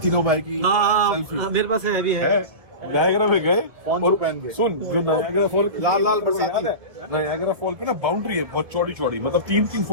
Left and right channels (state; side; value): late; left; 1.7 ms